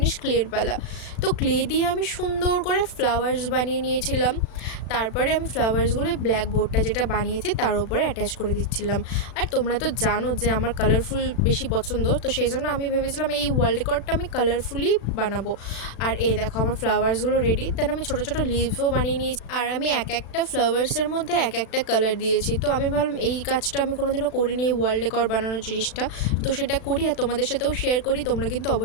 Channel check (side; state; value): right; late; 36 ms